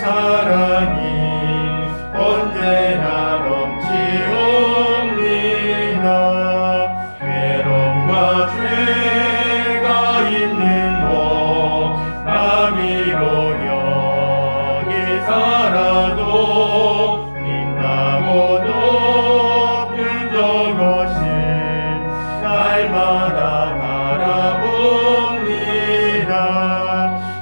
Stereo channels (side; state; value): both; inverted; correlation -1.00